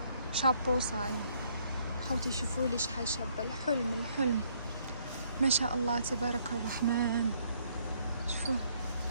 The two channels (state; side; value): inverted; both; correlation -0.67